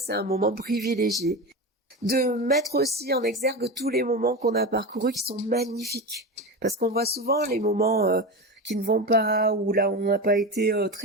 un moment privilégié. De mettre aussi en exergue tous les moments qu'on a parcourus qui sont magnifiques. Parce qu'on voit souvent les moments qui ne vont pas, ou là où on n'a pas été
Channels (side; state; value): both; normal; correlation 0.22